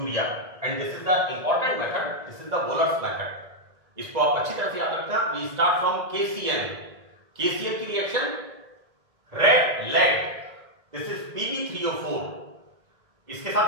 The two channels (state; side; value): late; left; 1.9 ms